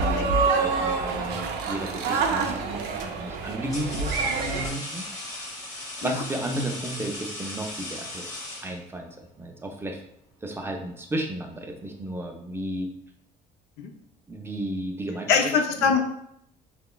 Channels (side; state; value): both; normal; correlation 0.23